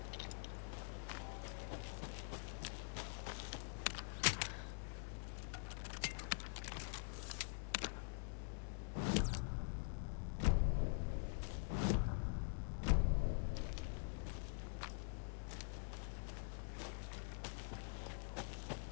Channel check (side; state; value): right; silent; digital silence